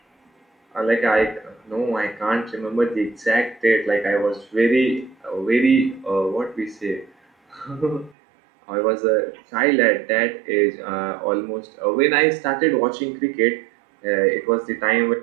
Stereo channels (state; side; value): drops out; left; at 8.2 s